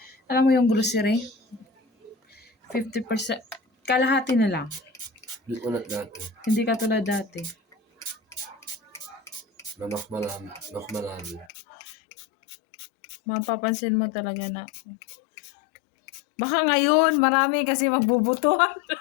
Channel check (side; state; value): right; drops out; at 11.5 s